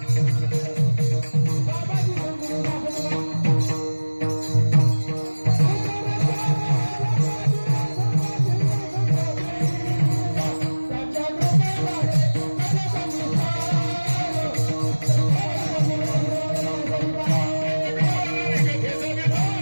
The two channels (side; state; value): both; inverted; correlation -1.00